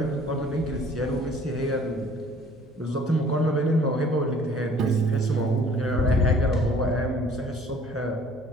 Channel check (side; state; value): both; normal; correlation 0.54